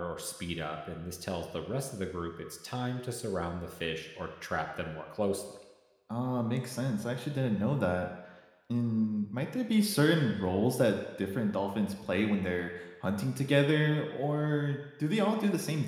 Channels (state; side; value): identical; both; correlation 1.00